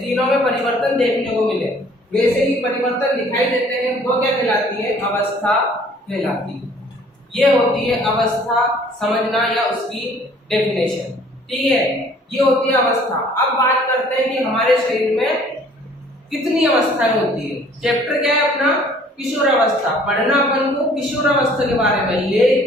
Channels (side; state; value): both; normal; correlation 0.55